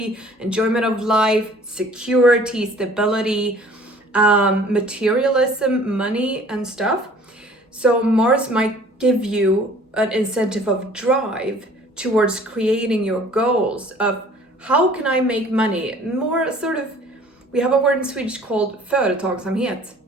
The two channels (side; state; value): both; normal; correlation 0.52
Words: enjoyment of life, security, stability, materialism, money and stuff. So Mars might give you an incentive of drive towards creating your goals of how can I make money? More sort of, we have a word in Swedish called företagsamhet.